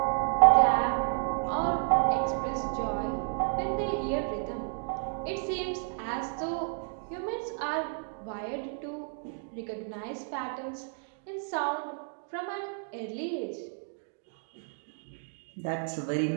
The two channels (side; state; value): left; silent; 57 dB below the other